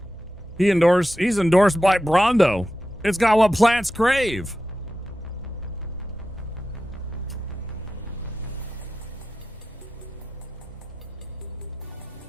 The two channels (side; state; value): both; normal; correlation 0.92